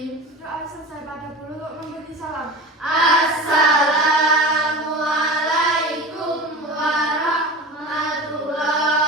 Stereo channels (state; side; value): normal; both; correlation 0.32